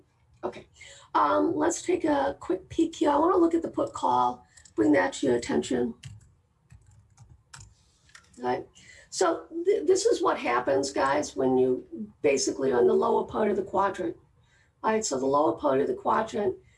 Okay, let's take a quick peek here. I want to look at the put call, bring that to your attention. Right. So this is what happens, guys, when you basically are in the lower part of the quadrant. All right, so the lower part of the quadrant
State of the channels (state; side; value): identical; both; correlation 1.00